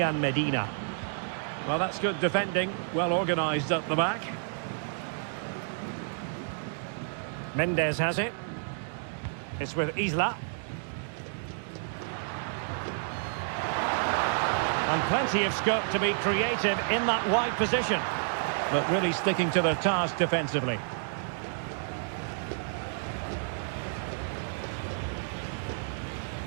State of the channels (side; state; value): left; silent; digital silence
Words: Medina. Well, that's good defending. Well organised up the back. Mendes has it. It's with Isla. And plenty of scope to be creative in that wide position. But really sticking to their task defensively.